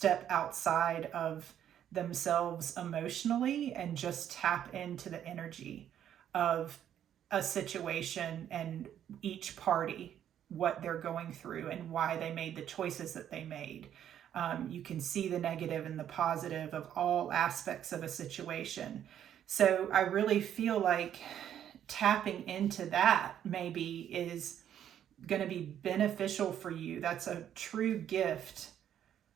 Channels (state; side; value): quieter; left; 10.1 dB